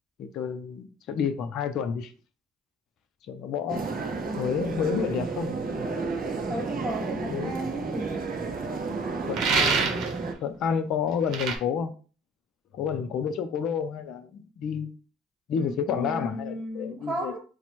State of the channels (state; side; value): normal; both; correlation 0.49